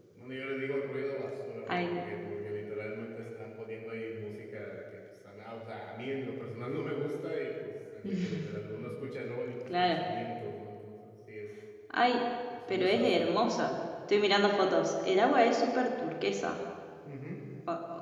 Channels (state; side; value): identical; both; correlation 1.00